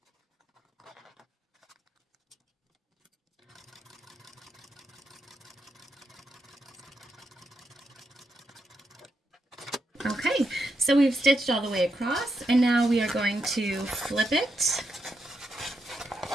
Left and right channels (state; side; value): normal; both; correlation 0.83